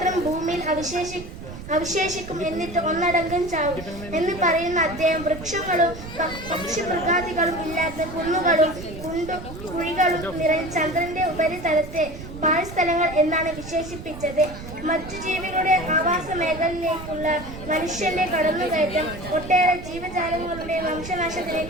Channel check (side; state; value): right; noise; rumble, 12 dB below the sound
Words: ഭൂമിയിൽ അവശേഷിക്കും, എന്നിട്ട് ഒന്നടങ്കം ചാവും എന്ന് പറയുന്ന അദ്ദേഹം വൃക്ഷങ്ങളും പക്ഷിമൃഗാദികളും ഇല്ലാത്ത കുന്നുകളും കുഴികളും നിറഞ്ഞ ചന്ദ്രന്റെ ഉപരിതലത്തെ പാഴ്സ്ഥലങ്ങൾ എന്നാണ് വിശേഷിപ്പിച്ചത്. മറ്റു ജീവികളുടെ ആവാസ മേഖലയിലേക്കുള്ള മനുഷ്യന്റെ കടന്നുകയറ്റം ഒട്ടേറെ ജീവജാലങ്ങളുടെ വംശനാശത്തിന്